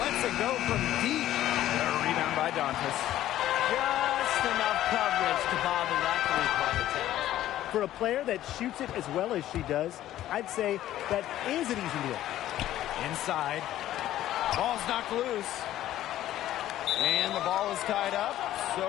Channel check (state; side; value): quieter; right; 13.3 dB